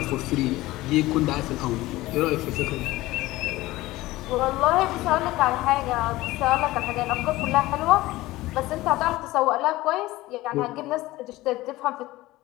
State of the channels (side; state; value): right; quieter; 18.2 dB